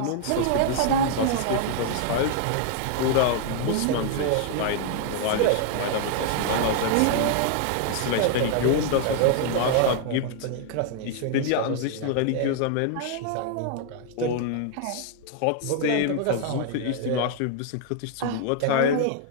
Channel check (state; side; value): different; both; correlation 0.00